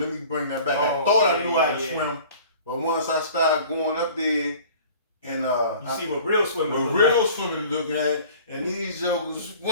me bring that back. I thought I knew how to swim, but once I started going up there, and you see what real swimming looking at, and these jokers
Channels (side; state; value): both; inverted; correlation -0.46